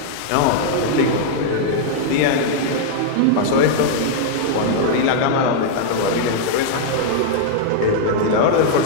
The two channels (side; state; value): both; different; correlation -0.01